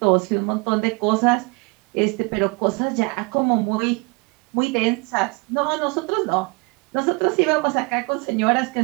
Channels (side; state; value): left; quieter; 29.3 dB